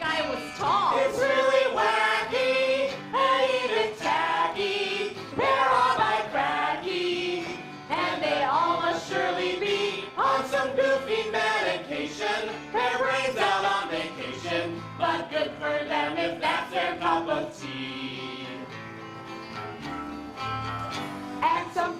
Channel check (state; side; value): identical; both; correlation 1.00